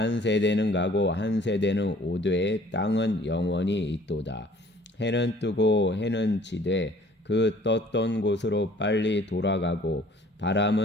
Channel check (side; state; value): both; normal; correlation 0.54